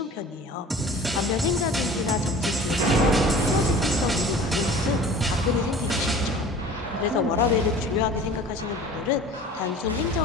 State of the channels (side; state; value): both; normal; correlation 0.43